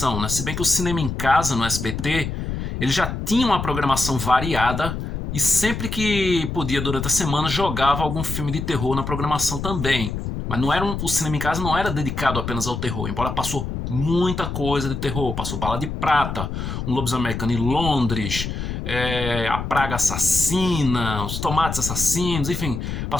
né? Se bem que o Cinema em Casa, no SBT, ele já tinha uma programação variada e sempre que podia durante a semana jogava algum filme de terror na programação também. Mas o Cinema em Casa não era dedicado apenas ao terror, embora passou muita coisa de terror. Passou Bala de Prata, Um Lobisomem Americano em Londres, A Praga Assassina, Os Tomates Assassinos, enfim,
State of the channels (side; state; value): left; noise; rumble, 5 dB below the sound